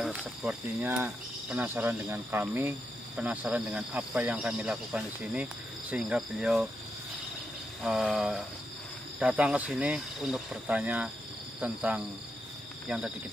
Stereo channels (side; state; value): both; normal; correlation 0.83